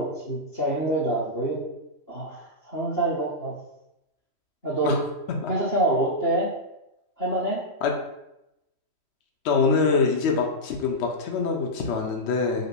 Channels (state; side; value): late; right; 3.1 ms